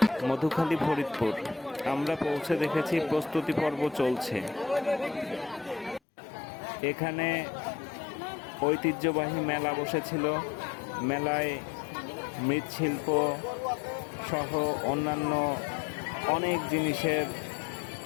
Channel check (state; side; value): drops out; right; at 6.0 s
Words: মধুখালী, ফরিদপুর। আমরা পৌঁছে দেখেছি প্রস্তুতি পর্ব চলছে। এখানে ঐতিহ্যবাহী মেলা বসেছিল। মেলায় মৃৎশিল্প সহ অন্যান্য অনেক জিনিসের